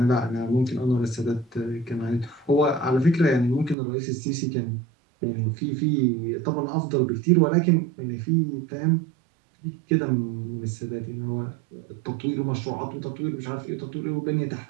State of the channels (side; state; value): left; drops out; at 3.8 s